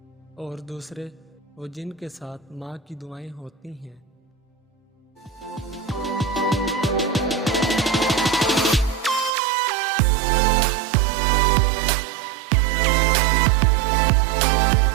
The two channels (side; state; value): left; drops out; at 9.3 s